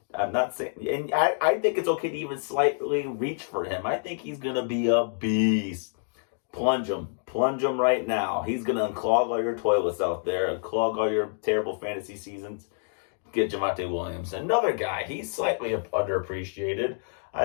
I'm not saying, and I think it's okay to even slightly reach for him. I think he's going to be a beast. Plunge him right now. He's going to unclog all your toilets out there, unclog all your terrible fantasy seasons. Get Javonte Williams. Another guy, he's slightly underappreciated.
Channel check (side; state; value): right; silent; digital silence